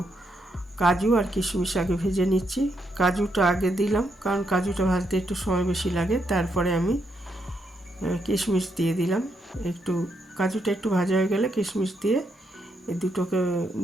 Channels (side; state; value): both; normal; correlation 0.79